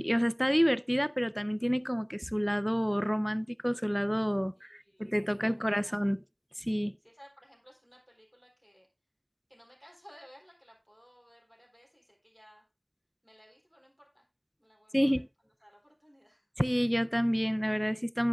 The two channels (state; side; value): identical; both; correlation 1.00